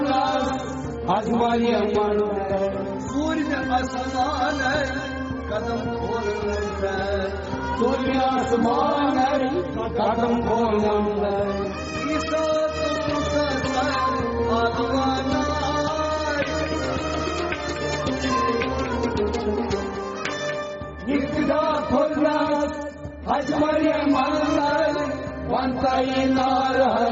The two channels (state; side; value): identical; both; correlation 1.00